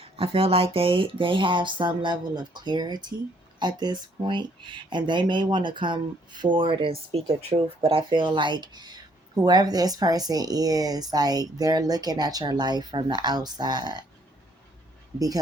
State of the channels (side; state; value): both; normal; correlation 0.66